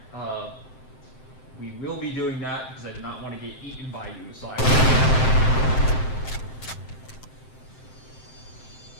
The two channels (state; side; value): late; right; 7.7 ms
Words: We will be doing that because I do not want to get eaten by you, so